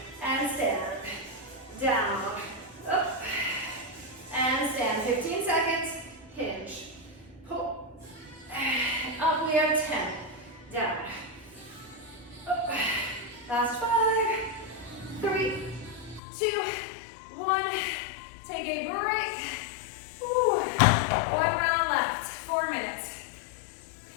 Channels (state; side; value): drops out; right; at 16.2 s